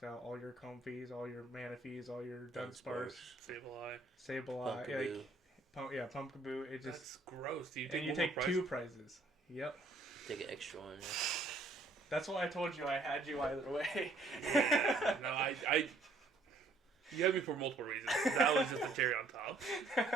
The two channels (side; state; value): left; quieter; 3.2 dB